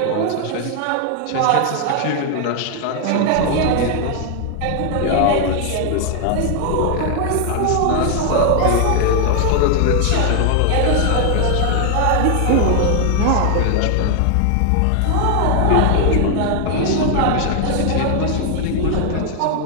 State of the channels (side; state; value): both; different; correlation 0.00